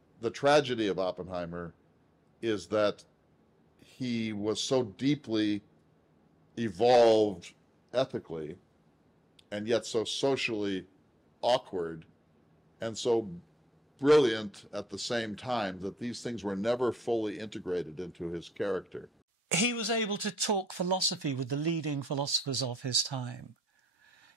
The tragedy of Oppenheimer is that he was so deeply evolved ethically and yet so socially awkward and so brilliant at the same time that these things were never fully integrated into his character. He was able to talk philosophy with the leading philosophers of his time.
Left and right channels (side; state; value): both; normal; correlation 0.80